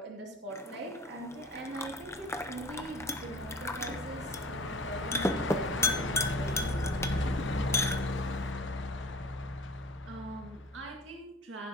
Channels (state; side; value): normal; both; correlation 0.43